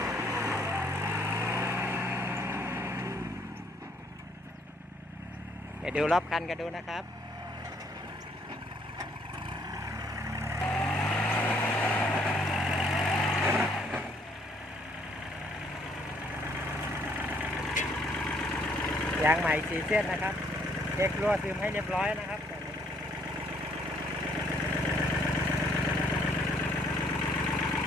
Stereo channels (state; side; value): normal; both; correlation 0.66